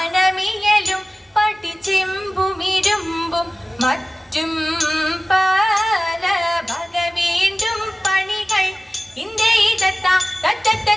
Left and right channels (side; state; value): both; normal; correlation 0.97